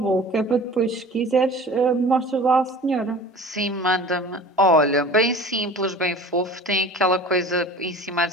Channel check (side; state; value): both; normal; correlation 0.41